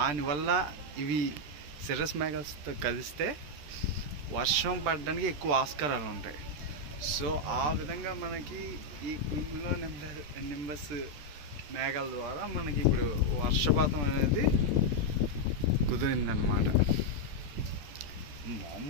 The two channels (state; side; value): late; left; 13 ms